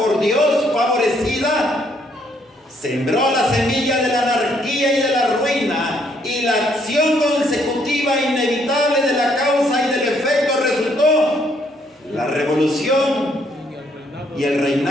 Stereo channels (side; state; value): both; normal; correlation 0.69